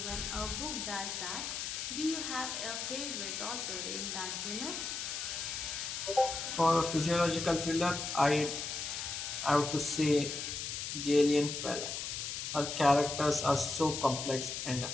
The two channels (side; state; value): left; noise; hiss, 4 dB below the sound